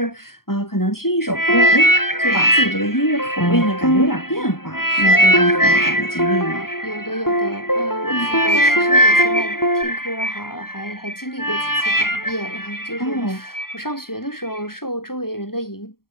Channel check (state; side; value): late; right; 0.93 ms